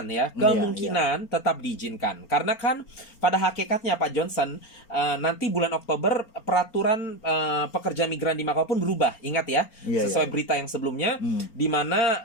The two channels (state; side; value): late; right; 4.4 ms